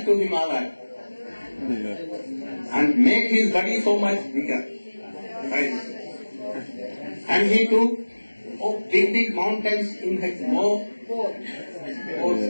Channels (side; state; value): both; inverted; correlation -1.00